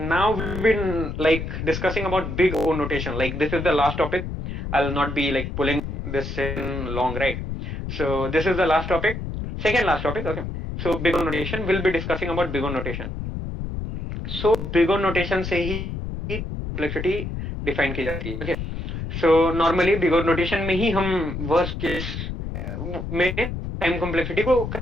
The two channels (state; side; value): noise; left; rumble, 5 dB below the sound